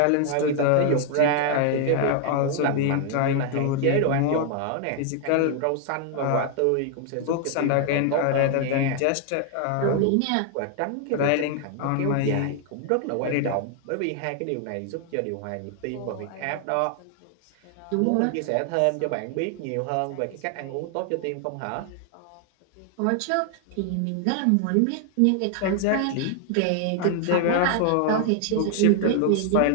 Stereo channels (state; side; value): different; both; correlation 0.00